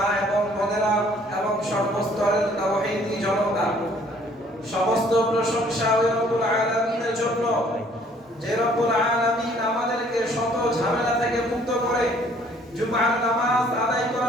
এবং বোনেরা এবং সর্বস্তরের তাওহীদি জনতা, সমস্ত প্রশংসা ওই রব্বুল আলামিনের জন্য যে রব্বুল আলামিন আমাদেরকে শত ঝামেলা থেকে মুক্ত করে জুমার নামাজ আদায়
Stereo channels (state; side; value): normal; both; correlation 0.59